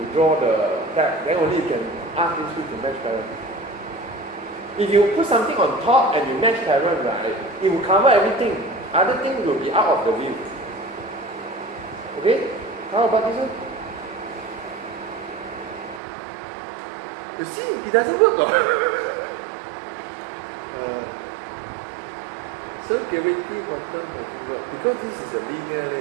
draw the tab, then only you can ask list view to mesh parent. If you put something on top and you mesh parent, right, it will cover everything. Other things will be out of the view. Okay? How about this one? You see, it doesn't work. So gravity bottom doesn't work because this is a linear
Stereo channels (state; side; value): drops out; left; at 16.0 s